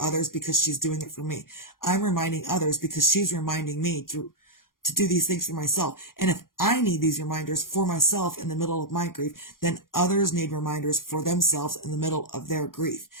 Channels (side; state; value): right; late; 0.91 ms